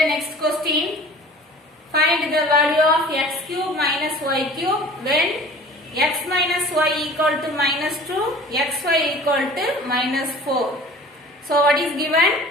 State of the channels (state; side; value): normal; both; correlation 0.44